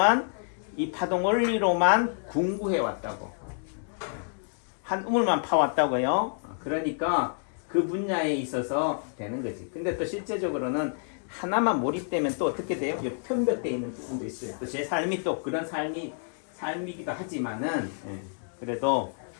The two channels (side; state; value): right; silent; digital silence